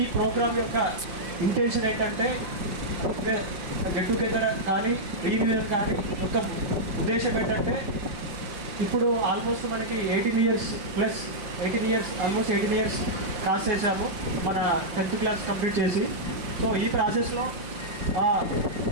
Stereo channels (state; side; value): late; left; 5.8 ms